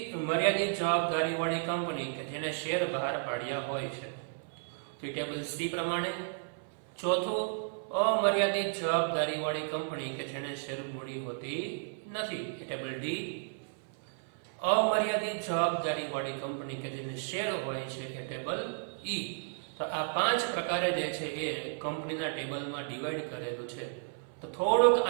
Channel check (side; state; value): left; silent; 55 dB below the other